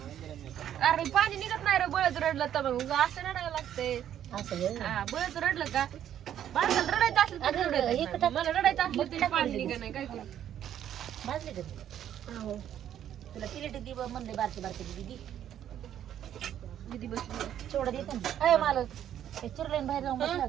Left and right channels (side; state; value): left; quieter; 10.5 dB